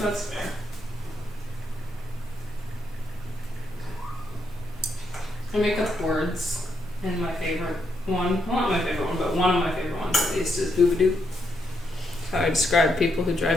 That's fair. I make up words, and my favorite one, well, not my favorite one, but one of my favorite ones at least is boobadoo. How I describe people who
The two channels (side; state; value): both; normal; correlation 0.79